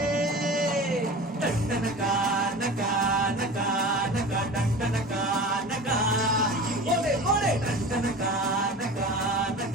டண்டனகா நகா நகா நகா டண்டனகா நகா ஓலே ஓலே டண்டனகா நகா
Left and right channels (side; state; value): both; normal; correlation 0.35